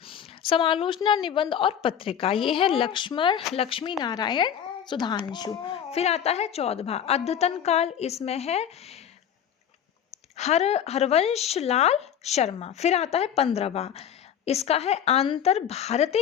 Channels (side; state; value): right; quieter; 8.9 dB